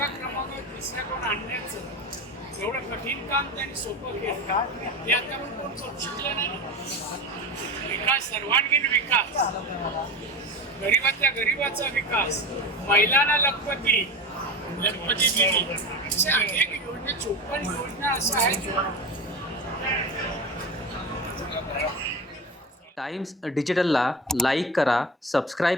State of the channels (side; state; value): both; normal; correlation 0.26